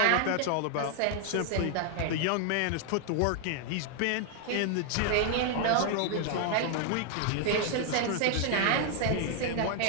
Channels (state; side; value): different; both; correlation 0.00